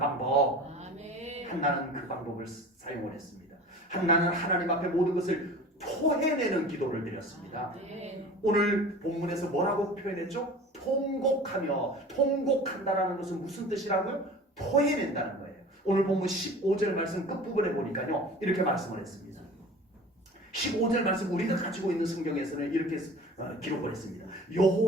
아멘. 한나는 그 방법을 사용을 했습니다. 한나는 하나님 앞에 모든 것을 토해내는 기도를 드렸습니다. 아멘. 오늘 본문에서 뭐라고 표현했죠? 통곡하며. 통곡한다라는 것은 무슨 뜻이라고요? 토해낸다는 거예요. 오늘 본문 15절 말씀 끝부분에 보니까요 이렇게 말씀을 했습니다. 15절 말씀 우리가 가지고 있는 성경에서는 이렇게 기록을 했습니다.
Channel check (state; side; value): normal; both; correlation 0.40